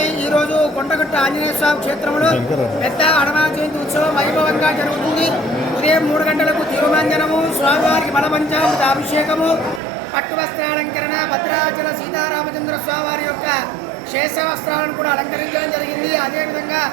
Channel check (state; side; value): drops out; left; at 9.8 s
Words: ఈరోజు కొండగట్టు ఆంజనేయ స్వామి క్షేత్రంలో పెద్ద హనుమాన్ జయంతి ఉత్సవం వైభవంగా జరుగుతుంది. ఉదయం 3 గంటలకు తిరుమంజనము, స్వామివారికి బలపంచామృత అభిషేకము, పట్టు వస్త్రాలంకరణ, భద్రాచల సీతారామచంద్ర స్వామివారి యొక్క శేష వస్త్రాలను కూడా అలంకరించడం జరిగింది. అదేవిధంగా